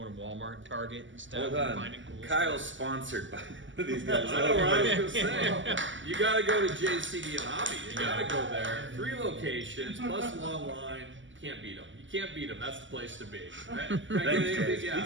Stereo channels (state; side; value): late; left; 0.55 ms